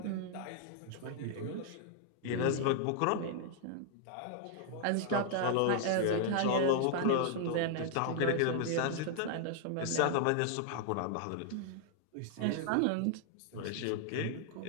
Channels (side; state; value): both; different; correlation 0.00